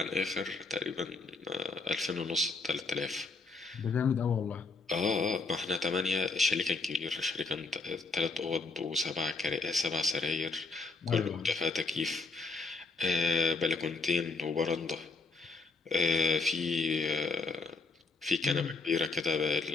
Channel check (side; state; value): right; quieter; 3.8 dB